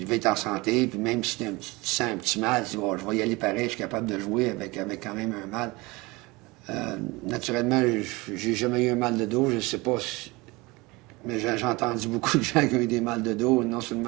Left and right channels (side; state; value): left; quieter; 23.4 dB